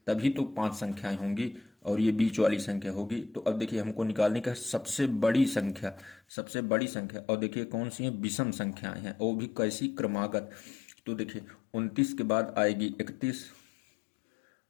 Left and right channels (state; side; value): drops out; right; at 6.2 s